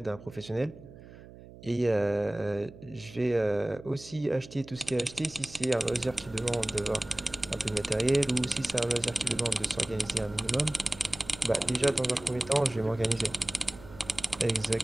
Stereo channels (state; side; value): noise; right; hum, 18 dB below the sound